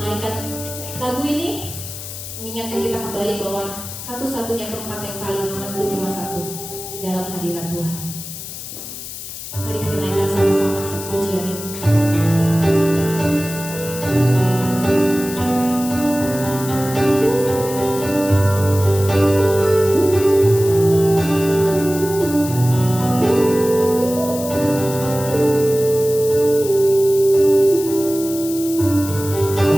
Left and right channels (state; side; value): noise; left; hiss, 10 dB below the sound